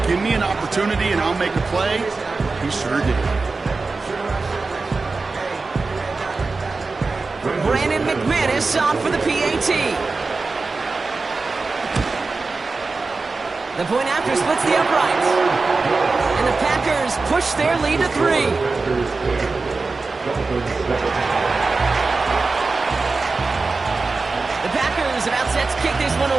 give me an opportunity and I'll make a play. He sure did. Brandon McManus on for the PAT. The point after splits the uprights. And the Packers push their lead to 3. The Packers about set to kick this one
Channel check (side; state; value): left; quieter; 3.9 dB